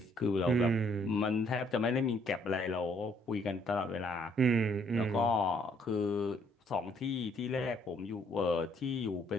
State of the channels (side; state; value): both; normal; correlation 0.66